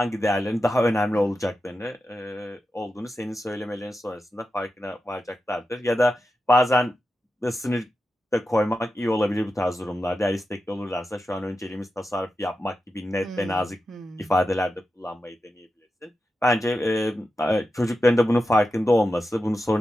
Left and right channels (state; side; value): normal; both; correlation 0.90